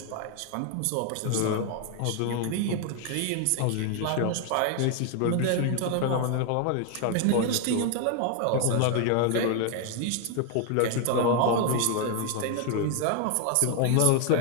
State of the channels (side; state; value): both; different; correlation 0.00